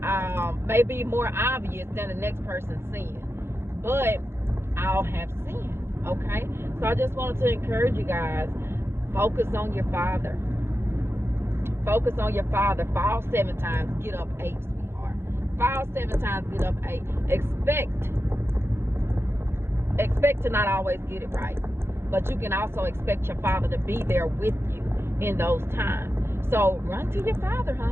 may be more obvious than the next person's sin, but all have sinned. Okay, so I just wanted to encourage you guys, focus on your Father. Focus on your Father. Fall 7 times, get up 8, sweetheart. Fall 7 times, get up 8. Expect to not always get it right, but you can also expect your Father to be there with you in those times. So run to your Father,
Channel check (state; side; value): late; left; 0.12 ms